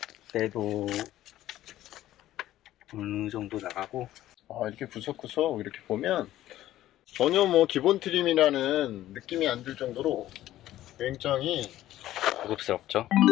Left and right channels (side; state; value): right; quieter; 14.0 dB